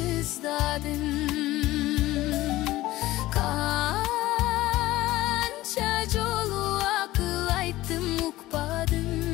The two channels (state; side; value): quieter; right; 17.0 dB